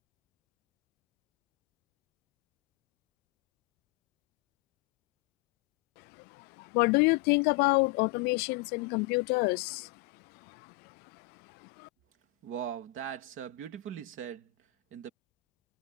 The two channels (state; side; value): quieter; right; 15.2 dB